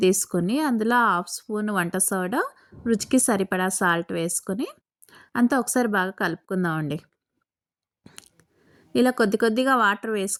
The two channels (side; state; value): both; identical; correlation 1.00